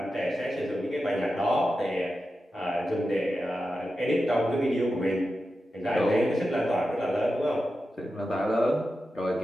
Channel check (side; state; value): both; normal; correlation 0.91